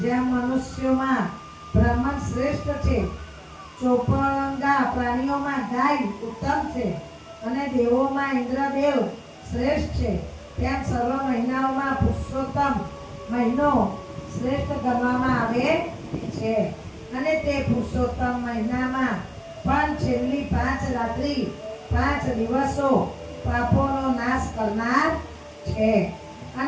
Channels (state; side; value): identical; both; correlation 1.00